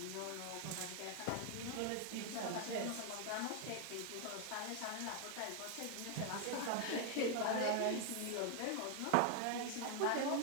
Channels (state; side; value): different; both; correlation 0.00